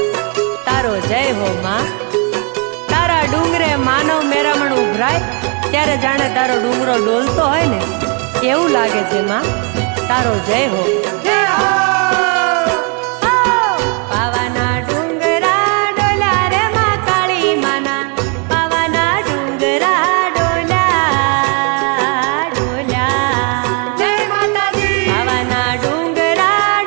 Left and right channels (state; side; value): quieter; left; 36.6 dB